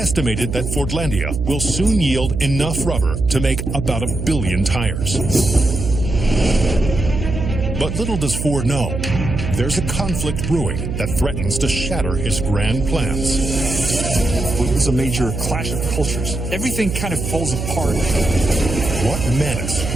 that Fordlandia will soon yield enough rubber to make about 1 billion tires. But little does Ford know, there's a conflict brewing that threatens to shatter his grand plans. It was a major clash of cultures. Everything kind of falls apart. What menace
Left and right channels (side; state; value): right; noise; hum, 4 dB below the sound